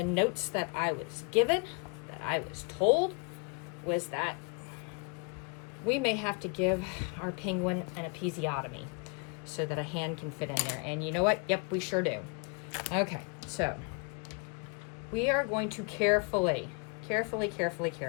notes that I was given, that I was told, was that we may have to give our penguin an episiotomy so that a hand can fit in there. And you know what? Yep, we sure do. Okay, so we are going to carefully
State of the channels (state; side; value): quieter; right; 33.0 dB